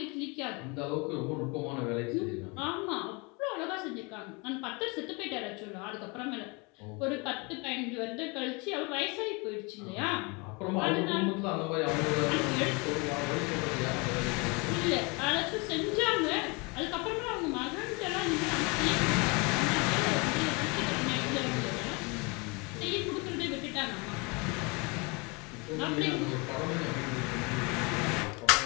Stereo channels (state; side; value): quieter; right; 29.2 dB